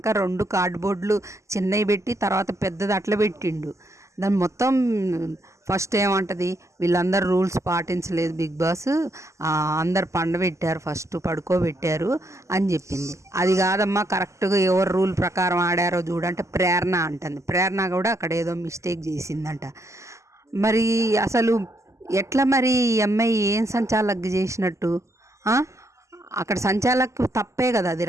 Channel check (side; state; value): left; late; 0.14 ms